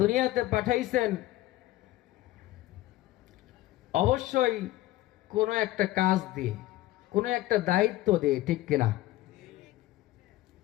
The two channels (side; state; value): right; quieter; 16.3 dB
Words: পাঠাইছেন অবশ্যই কোনো একটা কাজ দিয়ে, কোনো একটা দায়িত্ব দিয়ে, ঠিক কিনা?